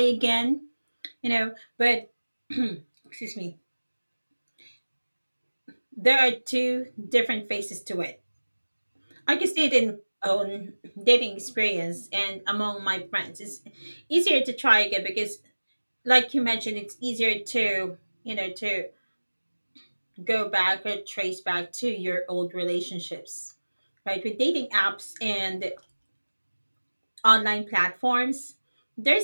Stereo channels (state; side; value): inverted; both; correlation -1.00